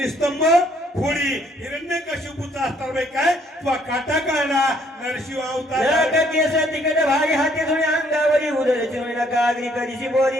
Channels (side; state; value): both; normal; correlation 0.65